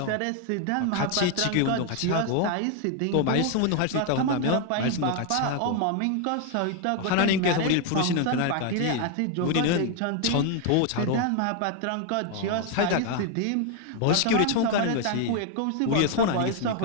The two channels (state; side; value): different; both; correlation 0.01